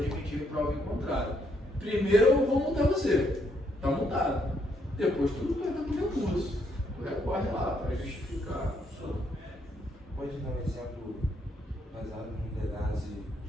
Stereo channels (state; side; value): normal; both; correlation 0.73